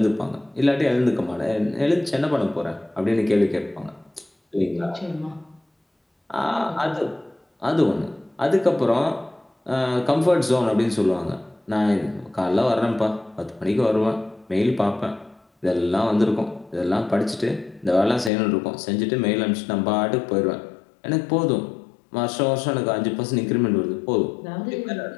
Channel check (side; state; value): right; drops out; at 18.3 s